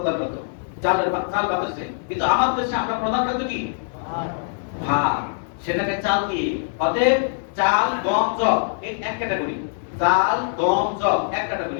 খাদ্য, চাল বাতাসে। কিন্তু আমার দেশে আমরা প্রধান খাদ্য কি? ভাত, সেটাকে চাল দিয়ে। অতএব চাল গম জব এক ক্যাটাগরি, চাল গম জব এক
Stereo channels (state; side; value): silent; right; digital silence